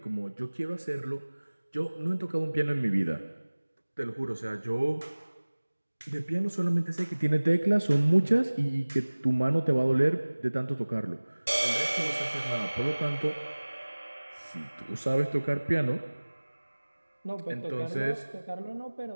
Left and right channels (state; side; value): inverted; both; correlation -1.00